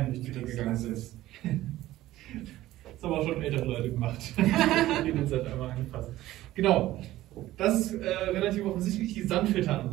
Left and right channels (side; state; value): left; quieter; 15.4 dB